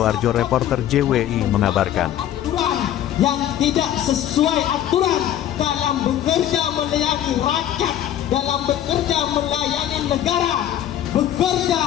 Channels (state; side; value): quieter; right; 11.3 dB